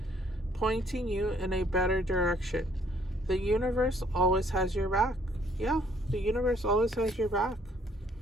pointing you in a better direction. The universe always has your back. Yeah, the universe always has your back.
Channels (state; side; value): normal; both; correlation 0.64